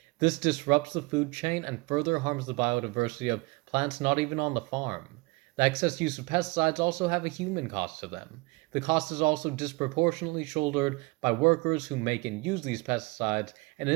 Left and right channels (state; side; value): quieter; left; 25.6 dB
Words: This disrupts the food chain and further harms the biodiversity of plants not even on the farm. The excess use of pesticides also have a human cost to them. The cost is also disproportionately shouldered by workers who make and use these pesticides and